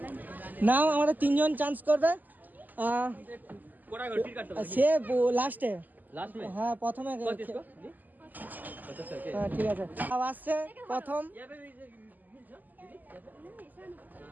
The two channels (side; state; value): left; late; 0.084 ms